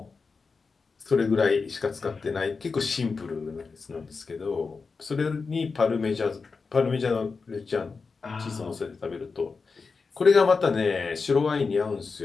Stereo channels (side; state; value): right; quieter; 4.7 dB